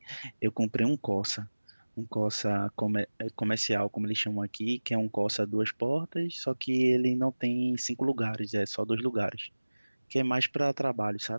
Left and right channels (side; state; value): both; inverted; correlation -1.00